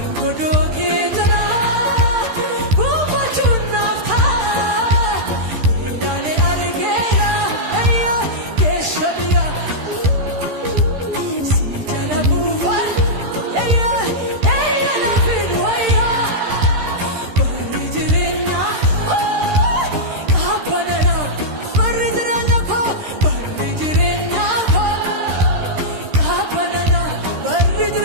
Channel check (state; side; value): late; left; 13 ms